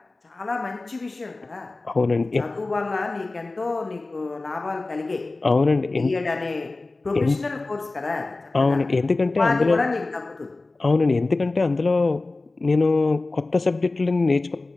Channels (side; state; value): right; quieter; 3.3 dB